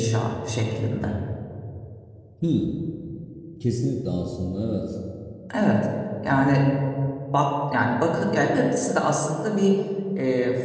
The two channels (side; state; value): both; identical; correlation 1.00